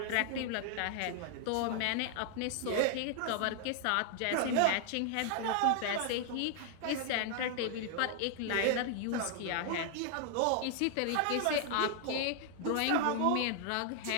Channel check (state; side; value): different; both; correlation 0.00